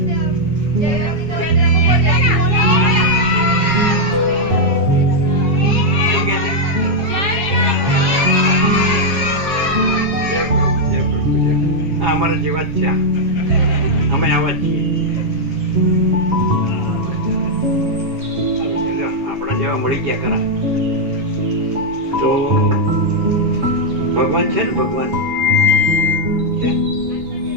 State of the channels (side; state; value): left; late; 7.2 ms